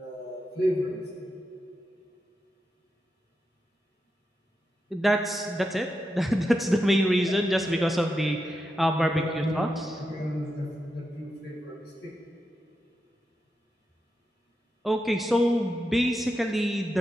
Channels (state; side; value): normal; both; correlation 0.87